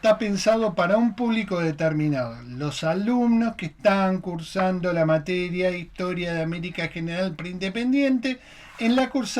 pensado para un público determinado, los alumnos que están cursando la materia Historia de América General Preindependiente en la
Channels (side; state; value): both; identical; correlation 1.00